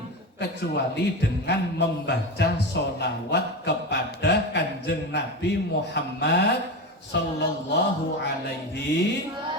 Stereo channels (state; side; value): normal; both; correlation 0.21